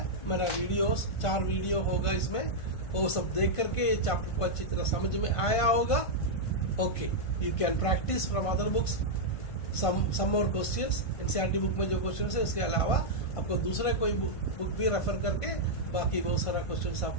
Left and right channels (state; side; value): late; right; 1.5 ms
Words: मेरा वीडियोस 4 वीडियो होगा इसमें, वो सब देख करके ये चैप्टर को अच्छी तरह समझ में आया होगा. Okay, you can practise from other books some more questions. NCERT book में जो क्वेश्चंस है उसके अलावा आपको दूसरा कोई बुक भी रेफर करके बाकी बहुत सारा क्वेश्चंस